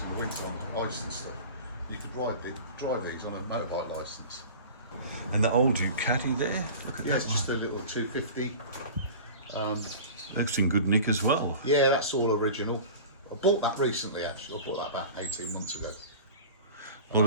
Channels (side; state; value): both; inverted; correlation -0.37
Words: in the winter on ice and stuff. You could drive these on a motorbike licence. And the old Ducati there, look at Yeah, that it's just a one. little 250. That's in good nick as well. Yeah, that's all original. I bought that recently, actually. I bought that about 18 months ago. A lot